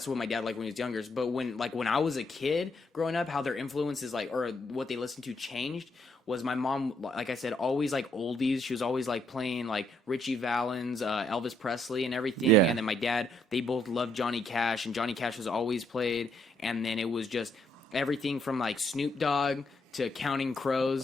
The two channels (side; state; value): both; normal; correlation 0.72